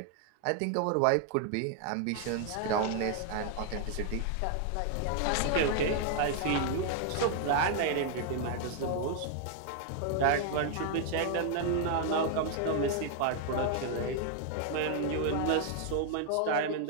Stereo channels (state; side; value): different; both; correlation 0.00